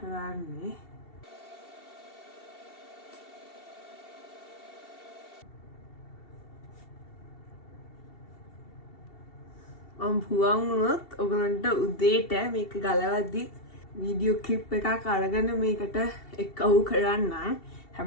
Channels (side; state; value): right; late; 2.7 ms